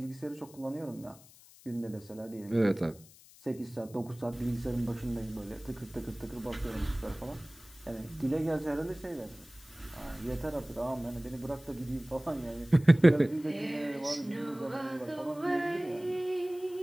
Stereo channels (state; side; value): noise; left; hiss, 23 dB below the sound